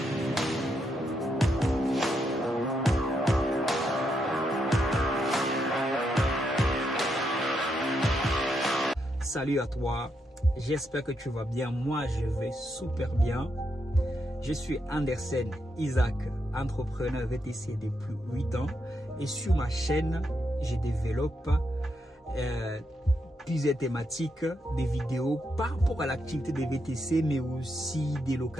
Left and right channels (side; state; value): both; normal; correlation 0.81